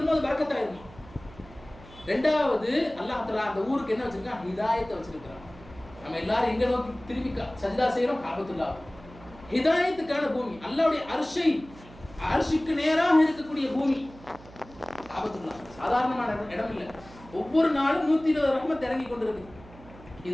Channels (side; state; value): right; noise; hum, 20 dB below the sound